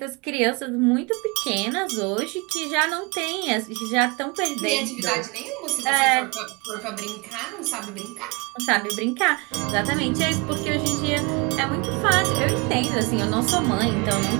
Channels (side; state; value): left; quieter; 28.4 dB